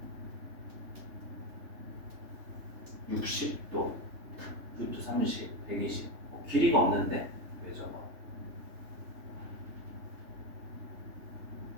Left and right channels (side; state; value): left; late; 3.2 ms